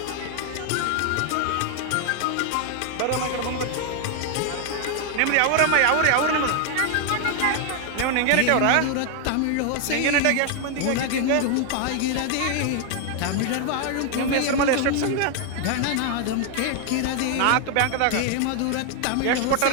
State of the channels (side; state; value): both; different; correlation 0.00